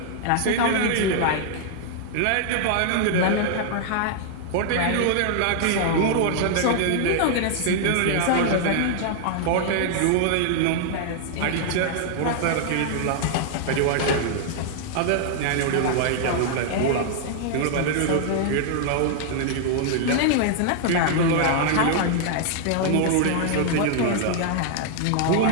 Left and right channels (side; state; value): both; different; correlation 0.00